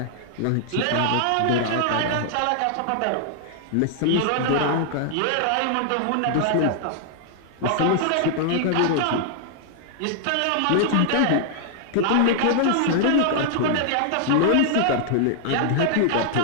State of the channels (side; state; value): both; different; correlation -0.01